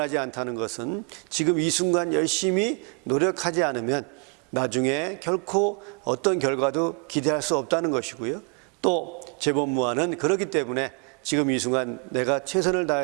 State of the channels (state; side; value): quieter; left; 34.0 dB